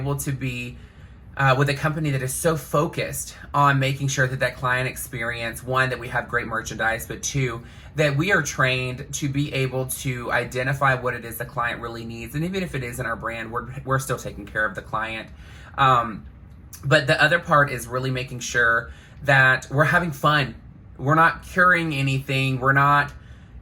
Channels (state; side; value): identical; both; correlation 1.00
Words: to be with a company that is so focused on making sure that client experience, one, that we have great merchandise, but two, that we are trained to be able to identify what it is the client really needs. And even if it isn't our brand, we're still taking care of the client. But the other part is really making sure that we're having fun. We're not curing anything. We're not